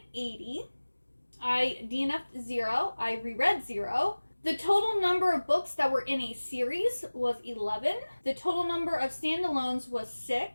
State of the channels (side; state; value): both; inverted; correlation -1.00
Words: I DNF'd 0. I reread 0. The total number of books that were in a series was 11. The total number of standalones was